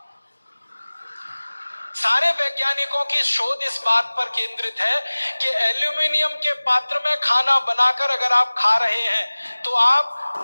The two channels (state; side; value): inverted; both; correlation -1.00